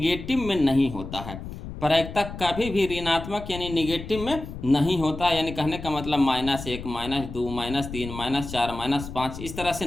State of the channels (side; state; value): left; noise; rumble, 10 dB below the sound